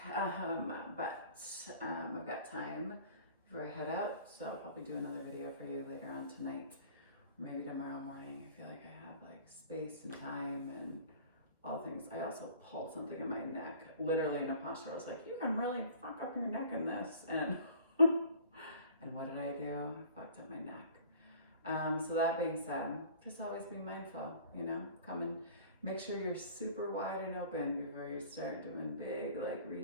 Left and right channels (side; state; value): both; inverted; correlation -0.48